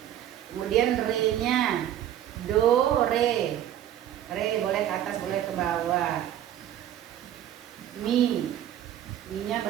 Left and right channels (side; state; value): left; quieter; 11.2 dB